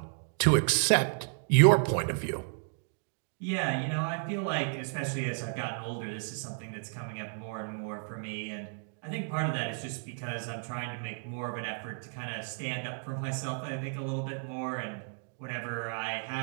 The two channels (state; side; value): silent; left; 56 dB below the other